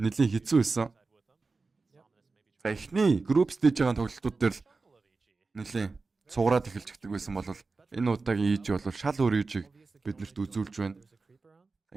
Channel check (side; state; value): left; quieter; 4.0 dB